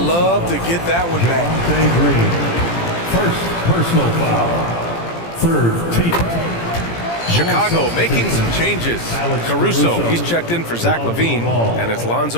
to get that one back. Green. First personal foul. Third team. Chicago making some changes. Caruso, he's checked in for Zach LaVine, and it's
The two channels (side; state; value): right; late; 17 ms